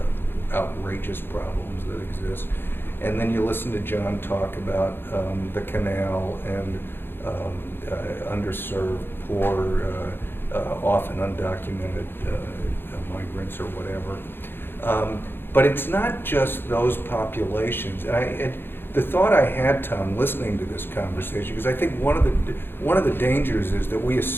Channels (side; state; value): right; late; 0.10 ms